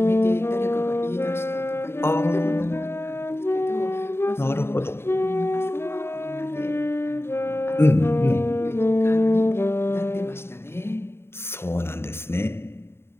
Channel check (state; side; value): late; right; 0.12 ms